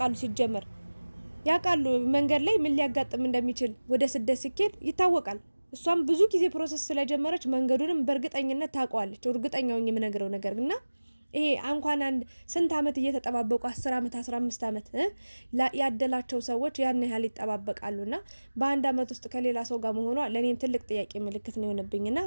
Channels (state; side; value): inverted; both; correlation -1.00